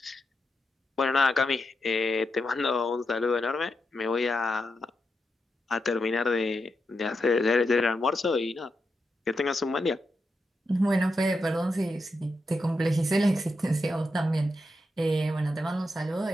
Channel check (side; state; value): both; normal; correlation 0.86